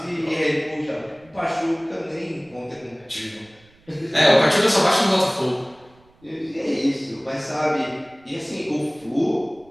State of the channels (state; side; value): noise; right; rumble, 30 dB below the sound